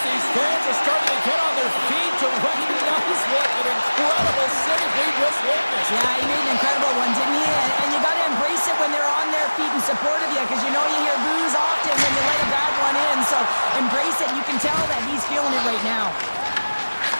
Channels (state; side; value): inverted; both; correlation -1.00